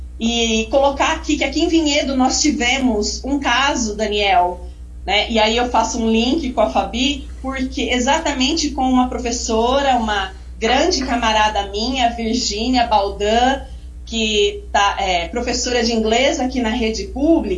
e colocar aqui que aqui em Vinhedo nós tivemos um caso, Daniel, né, e aí eu faço um link com a Fabi, porque exatamente com uma professora, uma grande camarada minha, Virgínia Baldan, que é professora de inglês aqui na rede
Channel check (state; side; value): identical; both; correlation 1.00